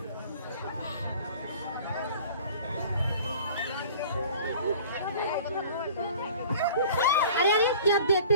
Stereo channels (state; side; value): inverted; both; correlation -0.46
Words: আরে আরে, কি आप देखते